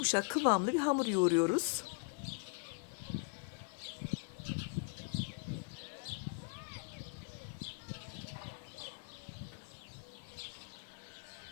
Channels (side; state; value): right; quieter; 38.0 dB